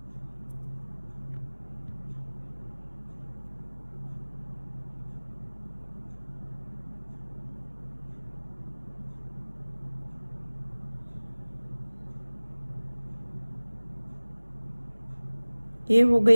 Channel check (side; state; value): both; inverted; correlation -1.00